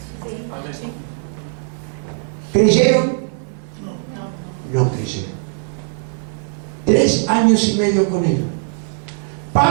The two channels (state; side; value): silent; left; 66 dB below the other